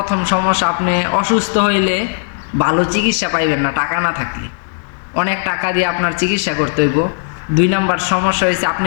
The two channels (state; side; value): silent; right; 66 dB below the other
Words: সমস্যা, আপনি অসুস্থ হইলে ভালো চিকিৎসা পাইবেন না টাকা না থাকলে। অনেক টাকা দিয়ে আপনার চিকিৎসা করতে হইব। 2 নম্বর সমস্যা হয়েছে, আপনি